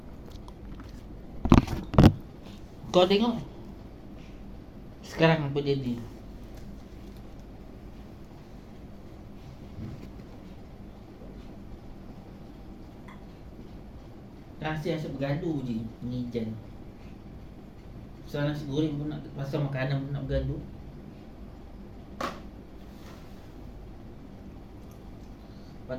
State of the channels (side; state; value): both; identical; correlation 1.00